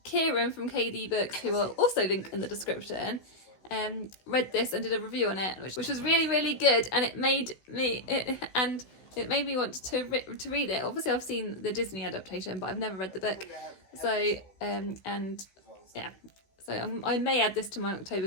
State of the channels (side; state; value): right; late; 16 ms